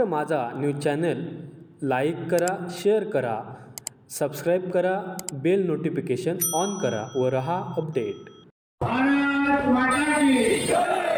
माझा news channel like करा, share करा, सबस्क्राईब करा, बेल नोटिफिकेशन ऑन करा व रहा अपडेट. भारत माता की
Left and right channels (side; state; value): both; identical; correlation 1.00